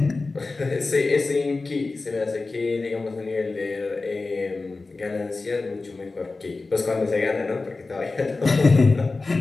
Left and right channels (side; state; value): right; quieter; 3.6 dB